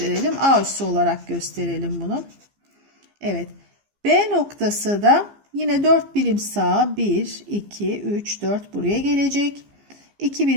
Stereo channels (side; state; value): left; late; 15 ms